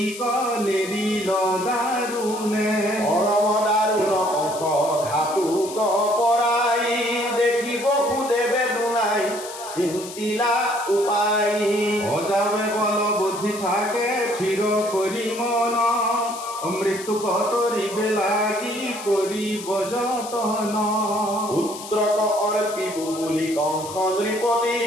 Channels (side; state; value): left; noise; hiss, 13 dB below the sound